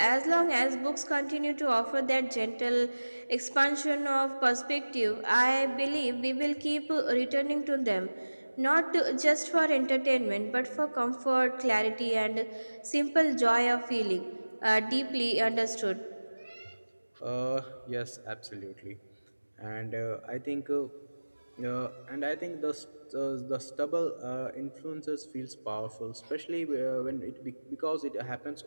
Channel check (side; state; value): both; inverted; correlation -1.00